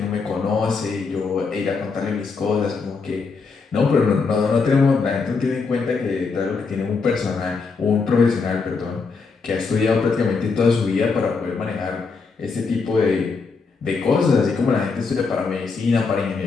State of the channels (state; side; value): quieter; right; 4.7 dB